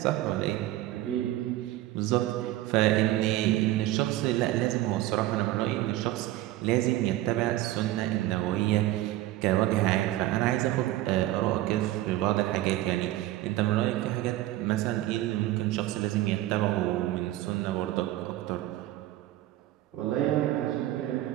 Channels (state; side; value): quieter; left; 15.4 dB